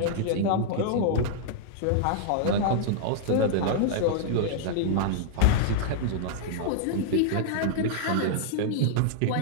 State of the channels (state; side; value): different; both; correlation -0.01